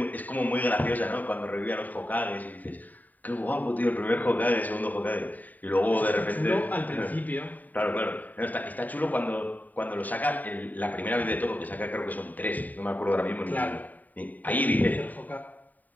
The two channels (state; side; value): late; right; 0.082 ms